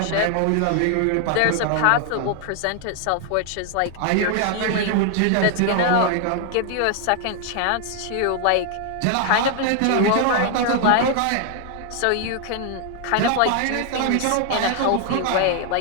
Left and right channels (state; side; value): different; both; correlation 0.00